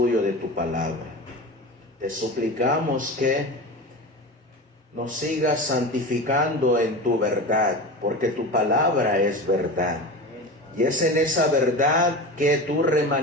de tu palabra. Te suplicamos que nos sigas santificando en tu verdad, porque tu palabra es verdad. Y es en esa verdad que tu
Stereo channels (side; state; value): both; normal; correlation 0.28